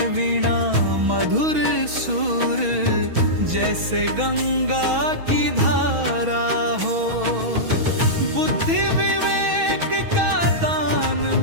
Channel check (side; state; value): left; late; 6.2 ms